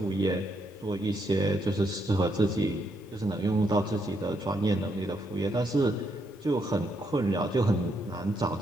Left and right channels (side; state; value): both; normal; correlation 0.77